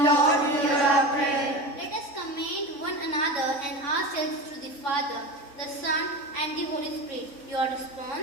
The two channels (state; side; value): late; right; 3.5 ms